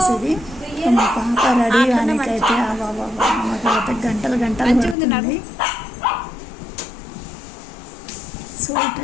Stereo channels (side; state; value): right; drops out; at 5.0 s